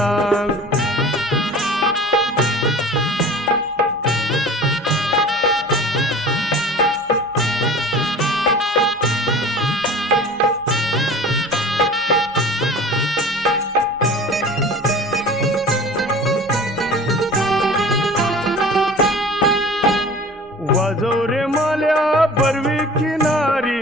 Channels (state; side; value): normal; both; correlation 0.41